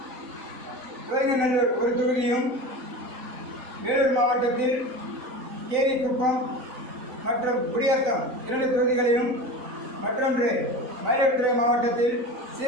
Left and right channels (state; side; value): late; left; 3.9 ms